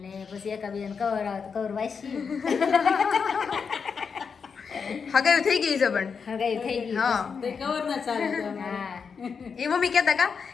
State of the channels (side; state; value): right; quieter; 5.9 dB